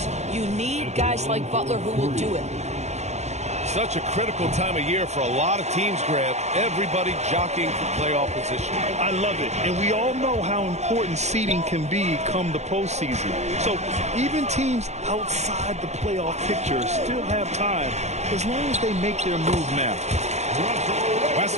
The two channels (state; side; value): late; left; 0.33 ms